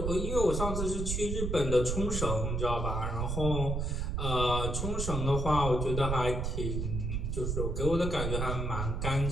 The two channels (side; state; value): right; noise; rumble, 1 dB below the sound